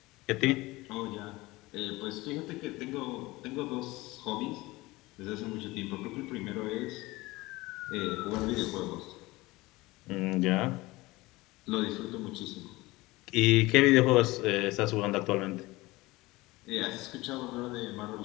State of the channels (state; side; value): quieter; right; 20.7 dB